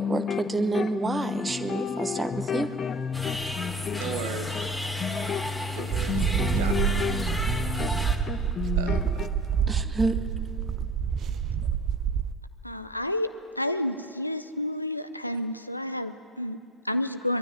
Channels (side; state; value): both; normal; correlation 0.38